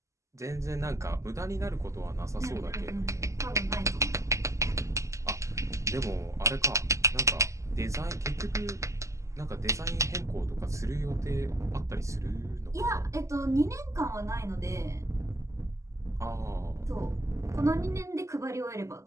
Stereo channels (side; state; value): left; late; 0.15 ms